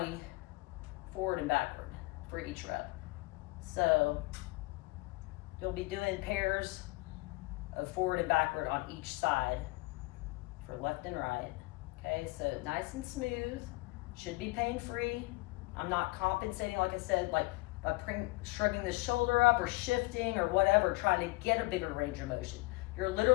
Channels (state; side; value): quieter; right; 23.1 dB